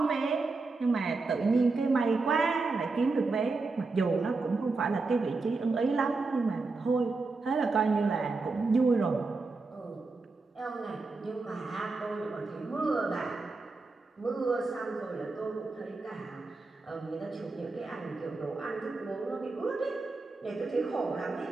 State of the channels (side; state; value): left; quieter; 3.8 dB